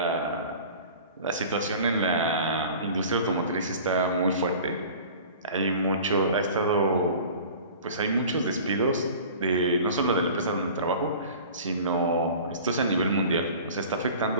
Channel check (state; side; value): inverted; both; correlation -0.42